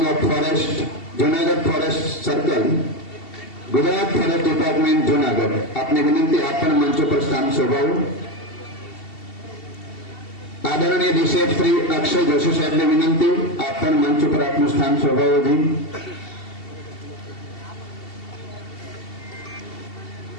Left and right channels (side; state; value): right; late; 2.7 ms